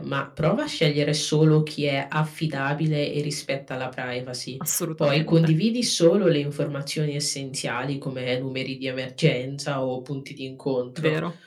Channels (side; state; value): both; identical; correlation 1.00